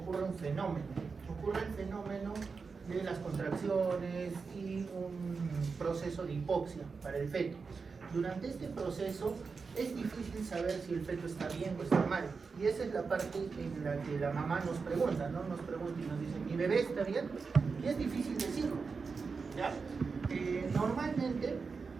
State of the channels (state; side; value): quieter; left; 4.9 dB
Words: un fenómeno. Ocurre el fenómeno de las contracciones y un proceso de hipoxia para el feto. Durante este proceso es difícil saber si el feto está bien o está mal. Y esa es la parte en la que la mamá nos pregunta, ¿no? Nos pregunta y nos dice, ¿mi bebé está bien? Y es difícil decirlo, ¿ya? Normalmente